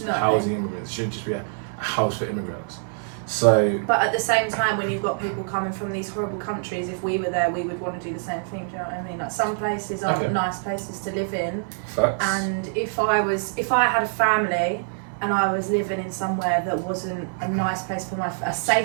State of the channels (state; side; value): silent; left; 58 dB below the other